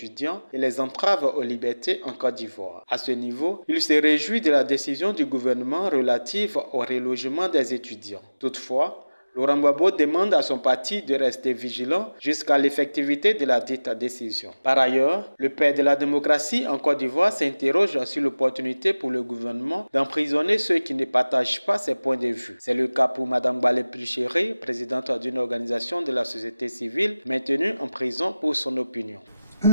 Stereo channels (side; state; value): both; inverted; correlation -0.98